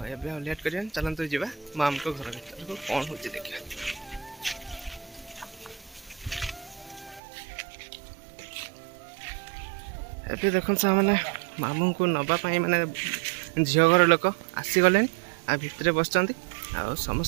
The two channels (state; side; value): drops out; left; at 7.2 s